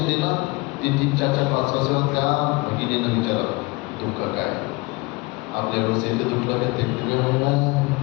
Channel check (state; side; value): quieter; right; 24.8 dB